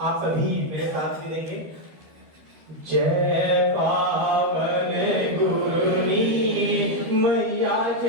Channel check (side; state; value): left; late; 13 ms